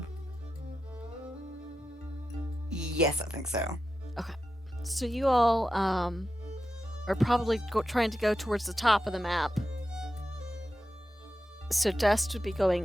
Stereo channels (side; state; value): both; normal; correlation 0.90